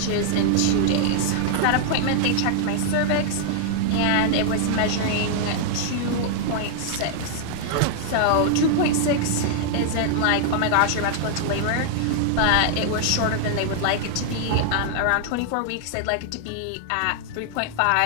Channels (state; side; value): different; both; correlation -0.01